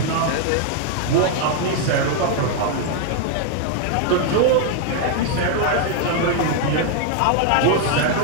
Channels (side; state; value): both; different; correlation 0.00